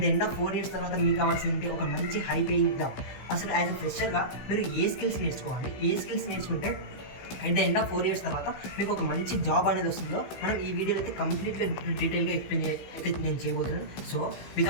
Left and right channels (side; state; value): right; late; 15 ms